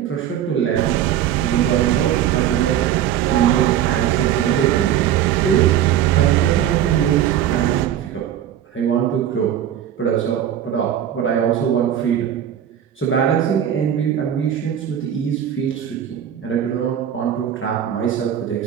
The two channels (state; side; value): quieter; left; 10.4 dB